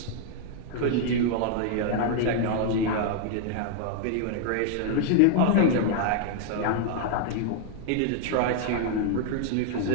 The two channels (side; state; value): both; different; correlation 0.00